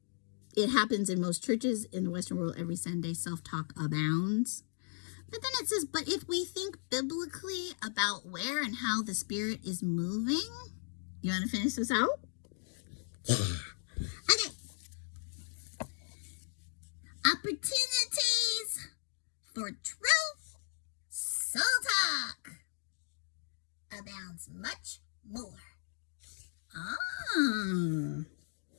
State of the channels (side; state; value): right; silent; 54 dB below the other